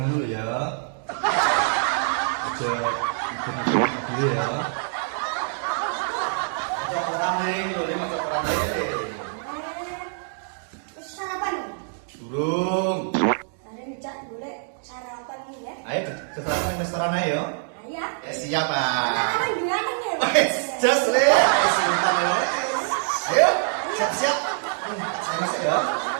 dulu ya. Aja ikut ya. Aja orang ning, lho aja orang ning. Sarapan. Durung. Ada ngejak boleh sarapan nih ya. Ayo ke sarapan restoran aja ya. Iya. Siap, Pak. Sarapan gimana nih? Just le, sebentar ya. Ayo, siap-siap. Saya masuk ya.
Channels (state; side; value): silent; left; digital silence